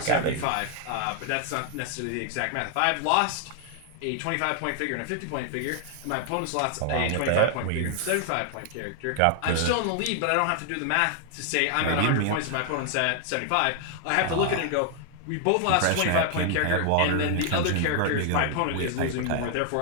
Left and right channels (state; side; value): different; both; correlation 0.00